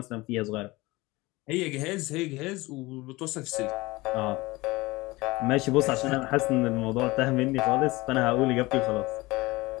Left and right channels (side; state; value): right; quieter; 21.3 dB